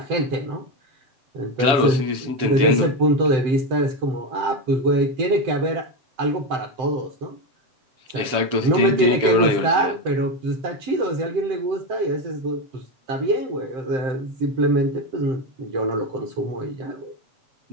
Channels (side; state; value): left; late; 7.2 ms